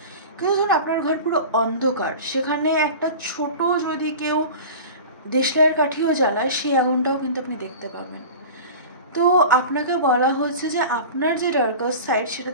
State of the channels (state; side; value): inverted; both; correlation -0.35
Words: কিন্তু ধরুন আপনার ঘর পুরো অন্ধকার, সেখানে একটা ছোট যদি কেউ দেশলাইয়ের কাঠিও জ্বালায়, সেই আগুনটাও কিন্তু আপনি দেখতে পাবেন। তো আপনাকে বলা হচ্ছে যে আপনার যে ডার্কার সাইড,